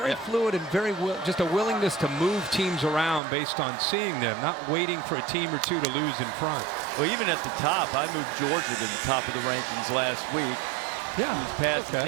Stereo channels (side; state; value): left; drops out; at 3.2 s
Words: fluid and very just a willingness to move teams around based on seeing them, not waiting for a team or two to lose in front. Well, even at the top, I moved Georgia to the top of the rankings last week. Yeah, his pass is